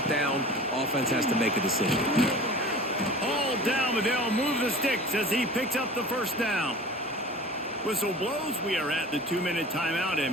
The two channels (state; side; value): normal; both; correlation 0.40